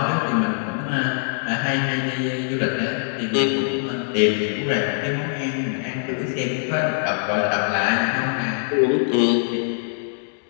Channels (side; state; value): right; silent; digital silence